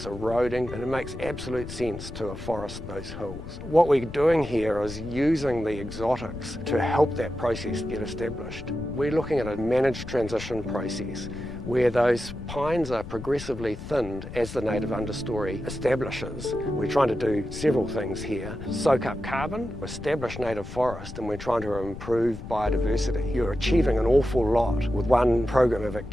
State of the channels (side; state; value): left; noise; rumble, 11 dB below the sound